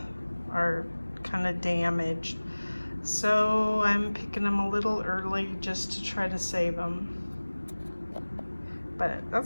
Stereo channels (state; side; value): inverted; both; correlation -1.00